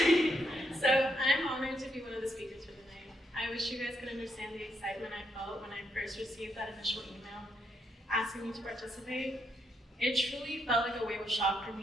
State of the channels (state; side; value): normal; both; correlation 0.77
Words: So I'm honored to be one of the speakers for the night. I wish you guys could understand the excitement I felt when I first received that initial email asking me to participate. It truly felt like a wave of shock for